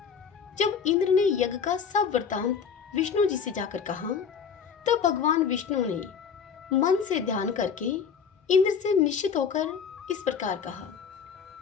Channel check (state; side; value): quieter; right; 6.7 dB